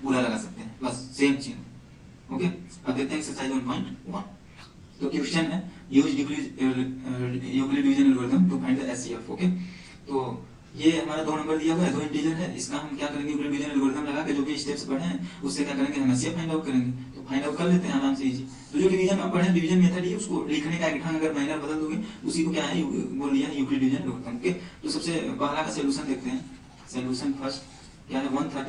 पूरा लगा सकते हैं, बस सेम चीज। ओके, अब देखते हैं एक्सरसाइज 1.1। तो क्वेश्चन है use Euclid division algorithm to find the HCF. Okay, तो ये हमारा 2 नंबर दिया हुआ है, 2 इंटीजर है, इसका हम क्या करेंगे, यूक्लिड डिवीजन एल्गोरिथम लगा के जो भी स्टेप्स पढ़े हैं उससे क्या करेंगे, हम एचसीएफ फाइंड आउट करेंगे। तो फाइंड आउट कर लेते हैं आराम से, इजी। तो जो डिवीजन आप पढ़े, डिवीजन मेथड है, उसको लिखने का एक ढंग अगर माइनर बदल दोगे उसी को क्या है बोल दिया यूक्लिड डिवीजन एल्गोरिथम। ओके, तो सबसे पहला का सॉल्यूशन देखते हैं। सॉल्यूशन फर्स्ट क्या है,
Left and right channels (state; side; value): identical; both; correlation 1.00